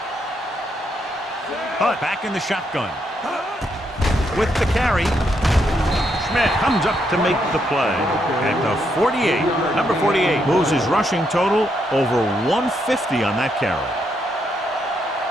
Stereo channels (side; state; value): both; normal; correlation 0.78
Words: Hunt back in the shotgun. With the carry. Schmidt comes up to make the play at the 48. Number 48 moves his rushing total over 150 on that carry.